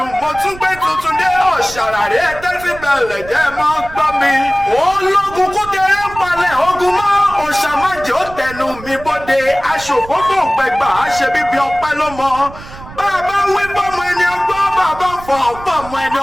mo tún gbé tuntun dé ọ̀ṣàràrí ẹ̀tẹ́sí bẹ̀rẹ̀ jẹ́ mọ́ gbọ́ mi. ológun kúkẹrẹ ń palẹ̀ ogun mọ́ òṣàmájì ó tẹnu mi bóde aṣòfófó gbẹgbà àṣẹ bíbí ọpẹ́ ló mọ. bàbá wí bọ́mọ ẹni ọgbọ́n bàbá fọ ọ̀pọ̀ ọmọ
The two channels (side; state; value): right; noise; rumble, 16 dB below the sound